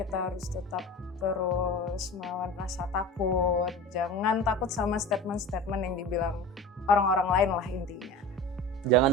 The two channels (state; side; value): normal; both; correlation 0.34